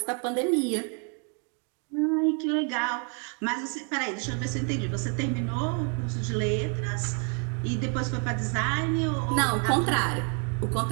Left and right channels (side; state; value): left; quieter; 38.8 dB